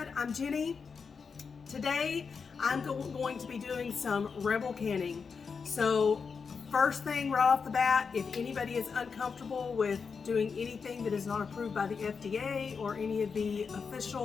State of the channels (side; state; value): right; quieter; 5.5 dB